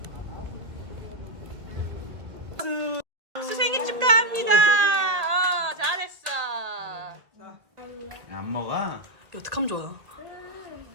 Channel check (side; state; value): left; late; 1.8 ms